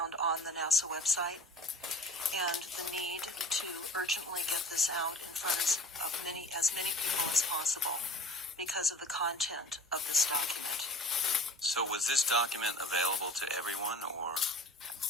on the NASA website, and the need to urgently get this out in front of as many people as possible because of the content of this document. So was this document available to everyone, or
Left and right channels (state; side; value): normal; both; correlation 0.44